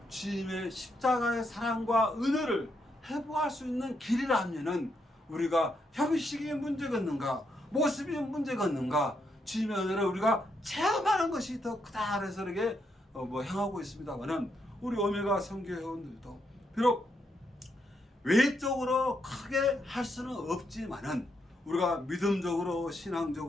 주님의 십자가의 사랑과 은혜를 회복할 수 있는 길이라면은 우리가 형식이 문제겠는가 모습이 문제겠는가 주님의 은혜를 우리가 체험하는 것이 더 크다 그래서 이렇게 행하고 있습니다만은 우리 오메가 선교회원들도 비록 외적으로 크게 할 수는 없지만은 우리가 믿음적으로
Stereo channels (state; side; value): normal; both; correlation 0.79